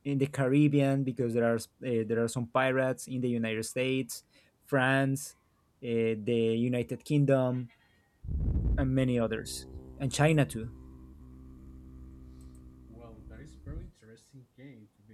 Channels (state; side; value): identical; both; correlation 1.00